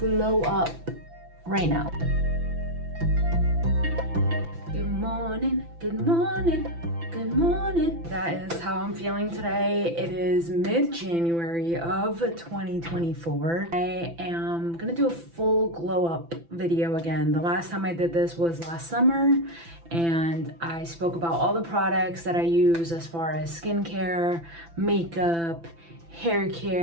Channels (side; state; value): left; late; 5.9 ms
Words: up right now. Good morning, good morning, good morning. That is how I'm feeling today. It is mid-January of 2024. I am gonna do a full glow up video again. The last time I did this was last summer, and I spoke about all the products that I use as far as skincare, makeup, hair